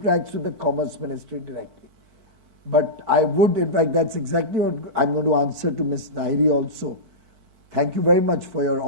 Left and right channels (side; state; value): left; late; 4.5 ms